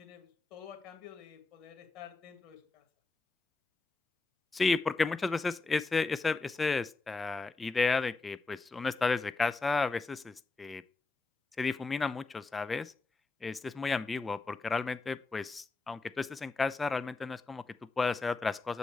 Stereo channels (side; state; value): right; quieter; 3.8 dB